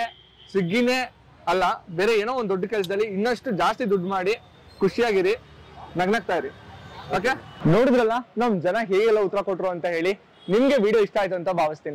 ಸ್ವಿಗ್ಗಿನೇ ಅಲ್ಲ, ಬೇರೆ ಏನೋ ಒಂದು ದೊಡ್ಡ ಕೆಲಸದಲ್ಲಿ ಇನ್ನಷ್ಟು ಜಾಸ್ತಿ ದುಡ್ಡು ಮಾಡಿ ಖುಷಿಯಾಗಿರಿ, ನಗ್ನಗ್ತಾ ಇರಿ. ಓಕೆ, ನೋಡಿದ್ರಲ್ಲ ನಮ್ ಜನ ಹೇಗೆಲ್ಲ ಉತ್ತರ ಕೊಟ್ರು ಅಂತ ಹೇಳಿ. ನಿಮ್ಗೆ ವಿಡಿಯೋ ಇಷ್ಟ ಆಯ್ತು ಅಂತ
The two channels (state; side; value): identical; both; correlation 1.00